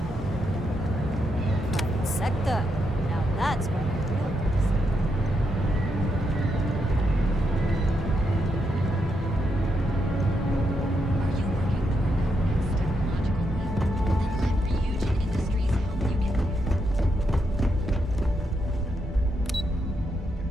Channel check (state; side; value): normal; both; correlation 0.81